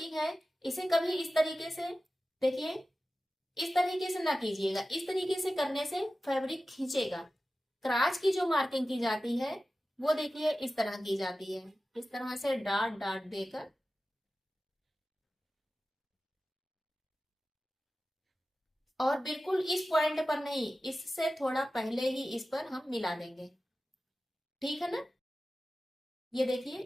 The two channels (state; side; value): normal; both; correlation 0.95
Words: है, इसे कभी इस तरीके से देखिए, इस तरीके से ना कीजिएगा, इस तरीके से करने से फैब्रिक खींचेगा। क्राच की जो मार्किंग की जाती है वो देखिए इस तरह की जाती है, इस तरह से डाट डाट देकर। और बिल्कुल इस पॉइंट पर नहीं, इससे थोड़ा पहले ही इस पर हम मिला देंगे। ठीक है ना, ये